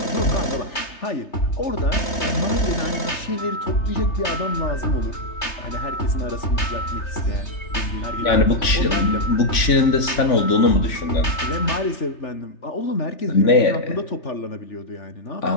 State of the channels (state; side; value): late; right; 3.5 ms